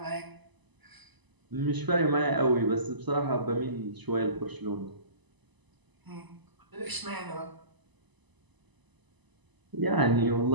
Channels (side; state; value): left; late; 1.0 ms